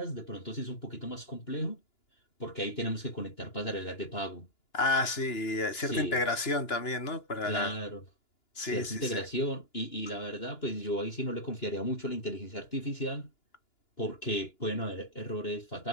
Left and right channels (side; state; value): right; late; 2.9 ms